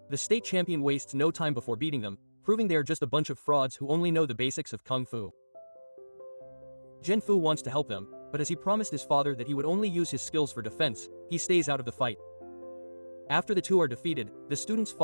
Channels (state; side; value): inverted; both; correlation -1.00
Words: The state champion wastes no time before beating them, proving they are just a bunch of frauds who only know the basics of Kung Fu. Zhen Fu wants to help them, but as he promised his father that he would only use his skills for defense, he stays out of the fight. After the two are defeated, the students